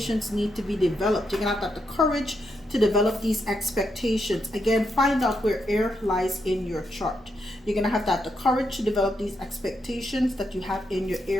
need to be developed. You're going to have the courage to develop these expectations. Again, find out where air lies in your chart. You're going to have the courage to develop these expectations that you have in your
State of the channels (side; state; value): both; normal; correlation 0.81